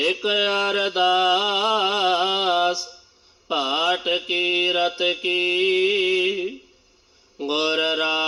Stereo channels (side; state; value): both; identical; correlation 1.00